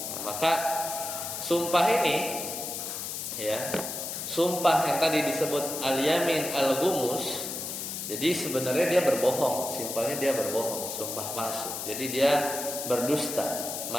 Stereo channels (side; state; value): left; noise; hiss, 5 dB below the sound